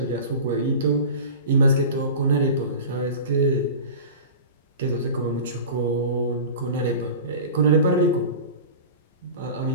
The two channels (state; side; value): inverted; both; correlation -0.34